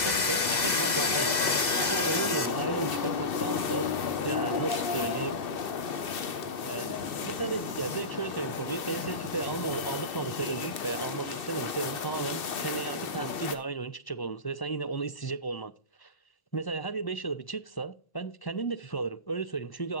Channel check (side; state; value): right; late; 2.0 ms